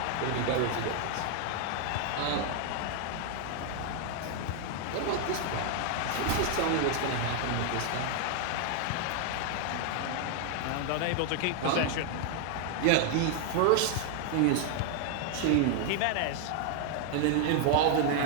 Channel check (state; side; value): different; both; correlation 0.00